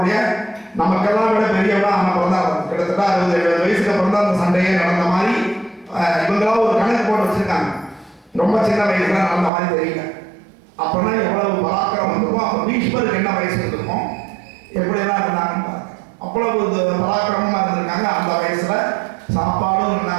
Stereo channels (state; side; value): drops out; left; at 9.5 s